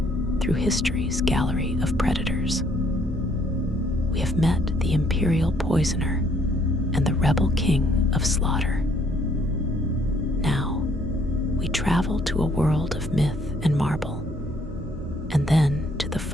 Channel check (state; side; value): normal; both; correlation 0.66